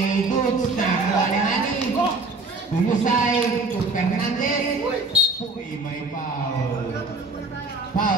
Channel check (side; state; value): left; quieter; 3.3 dB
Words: Goods, nakakuha ni Hani. Tuyusay, to Fernandez. Uy, may foul.